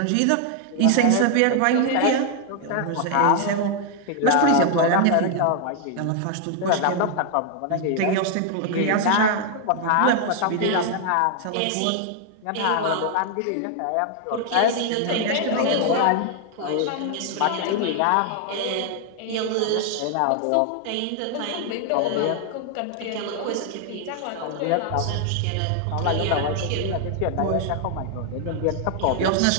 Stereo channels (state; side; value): different; both; correlation 0.00